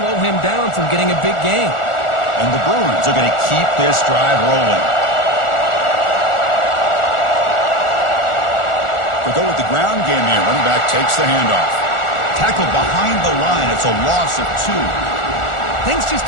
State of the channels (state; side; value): late; right; 1.4 ms